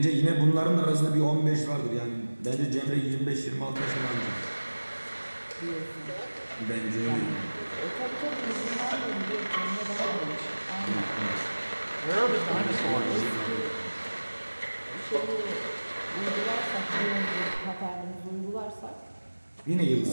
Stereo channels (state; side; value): inverted; both; correlation -1.00